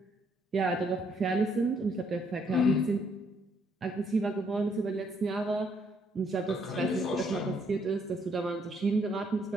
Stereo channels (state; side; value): normal; both; correlation 0.70